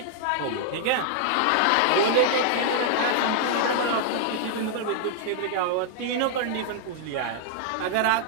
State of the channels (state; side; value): different; both; correlation -0.01